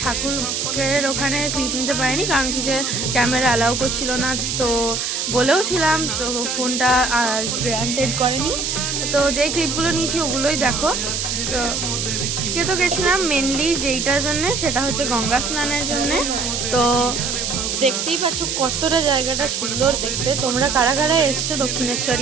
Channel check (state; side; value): noise; right; hiss, 1 dB below the sound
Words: ঠাকুরের ওখানে ক্লিপ নিতে পারিনি কারণ কি সে ক্যামেরা অ্যালাউ করছিল না। তো বলেও ছিলাম, তো ফোনটা গ্রান্টেড করেনি। তো যেই ক্লিপগুলো নিয়েছি ওগুলোই দেখো। তো আজকে তো গেছিলাম মেনলি যেইটার জন্যে, সেটা হচ্ছে গঙ্গা স্নানের জন্যে। তো দেখতেই পাচ্ছ কতটা জায়গাটা সুন্দর দেখতে। তোমরা কারা কারা এসছো